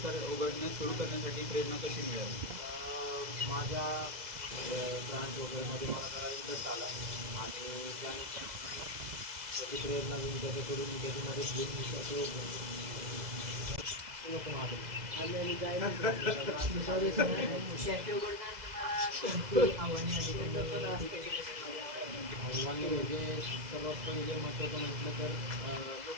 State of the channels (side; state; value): left; late; 2.0 ms